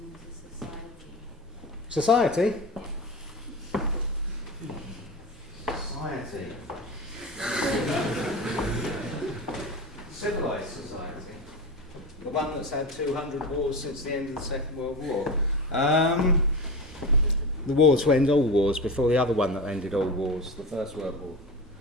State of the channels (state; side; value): normal; both; correlation 0.26